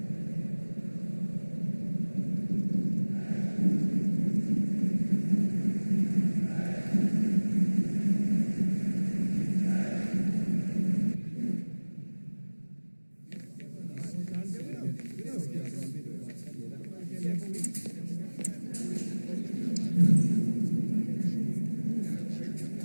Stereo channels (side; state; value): both; inverted; correlation -1.00